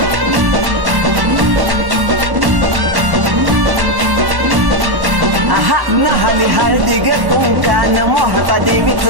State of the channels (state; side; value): late; left; 1.1 ms